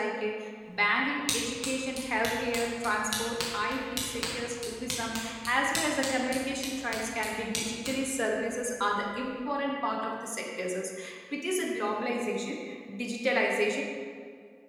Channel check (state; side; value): identical; both; correlation 1.00